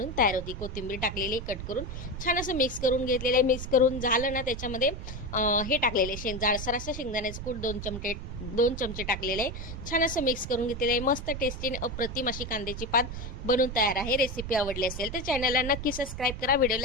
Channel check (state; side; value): noise; right; rumble, 7 dB below the sound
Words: तयार होती। कोथिंबीर टाकलेली कट करून छान असं मिक्स करून घेतलेलं आहे। मिक्स करून झालं ना, त्याच्यामध्ये हे टाकलेले जाडसर असं शेंगदाण्याचं कूट 2 चमचे टाकलेले आहे। छान असं मिक्स करून घेतलेलं आहे। मस्त टेस्टी आणि अप्रतिम अशी कांद्याची पात बनून तयार आहे। रेसिपी आवडली असेल तर चॅनलला नक्की सबस्क्राईब करा,